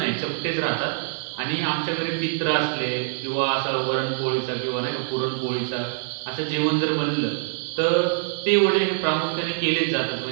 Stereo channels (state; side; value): silent; left; digital silence